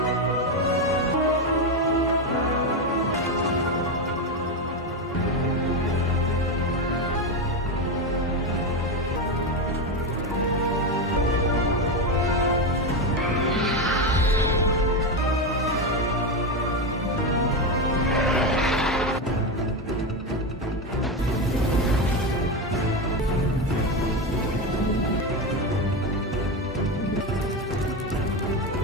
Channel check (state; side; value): normal; both; correlation 0.13